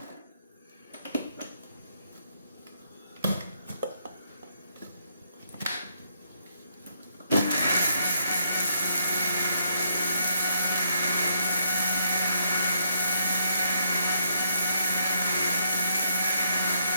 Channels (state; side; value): inverted; both; correlation -0.74